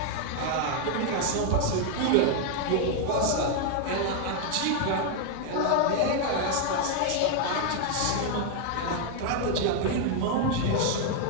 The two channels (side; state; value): both; different; correlation 0.00